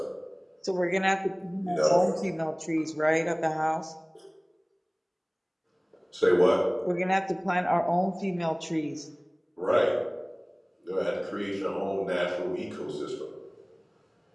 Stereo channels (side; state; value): both; identical; correlation 1.00